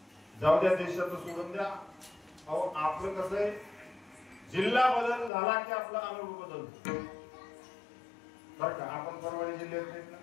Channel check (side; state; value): right; drops out; at 5.3 s